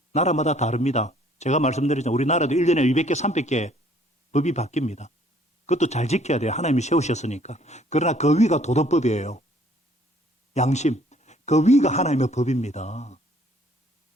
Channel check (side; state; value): both; normal; correlation 0.60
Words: 나라마다 다릅니다. 제가 말씀드리지만 우리나라도 1년에 200개, 300개 법이 바뀝니다. 그것도 잘 지켜야 돼요. 하나님이 세우셨으니까. 그러나 그 위가 도덕법이에요. 양심. 그 위가 하나님의 법입니다.